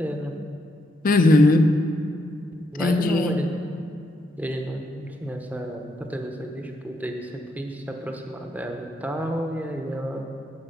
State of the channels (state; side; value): normal; both; correlation 0.78